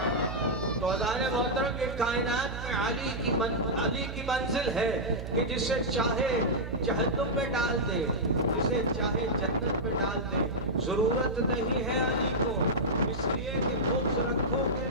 تو عزیزان محترم، یہ کائنات میں علی کی منزل ہے کہ جسے چاہے جہنم میں ڈال دے، جسے چاہے جنت میں ڈال دے۔ ضرورت نہیں ہے علی کو، اس لیے کہ بغض رکھو گے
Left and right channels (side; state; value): right; noise; hum, 7 dB below the sound